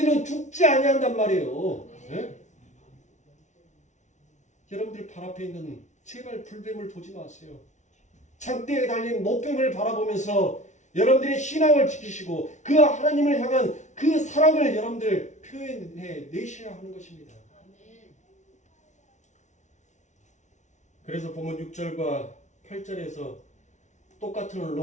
죽지 아니한단 말이에요. 네? 여러분들 발 앞에 있는 제발 불뱀을 보지 마세요. 장대에 달린 노뱀을 바라보면서 여러분들의 신앙을 지키시고 그 하나님을 향한 그 사랑을 여러분들 표현해 내셔야 하는 것입니다. 그래서 보면 6절과 8절에서 똑같은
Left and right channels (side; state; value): right; late; 0.35 ms